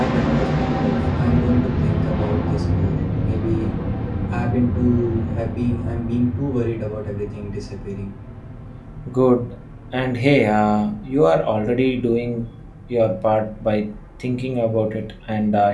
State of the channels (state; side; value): identical; both; correlation 1.00